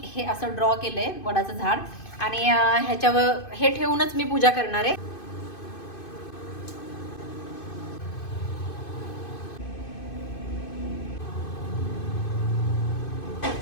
हे असं ड्रॉ केलं आहे वडाचं झाड, आणि ह्याच्यावर हे ठेवूनच मी पूजा करणार आहे.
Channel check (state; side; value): late; right; 2.5 ms